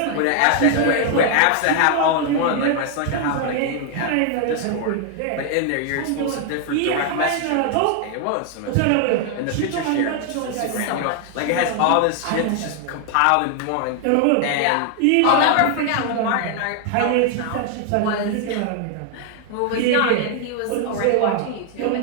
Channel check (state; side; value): different; both; correlation 0.00